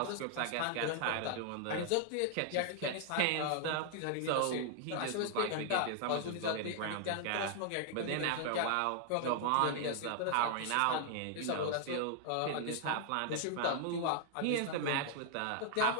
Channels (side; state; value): both; different; correlation 0.00